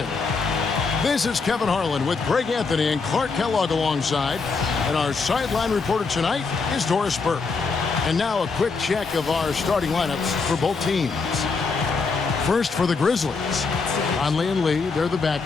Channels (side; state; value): right; quieter; 4.5 dB